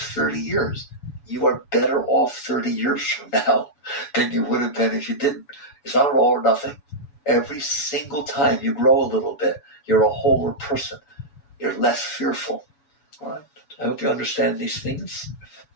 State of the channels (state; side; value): late; right; 7.1 ms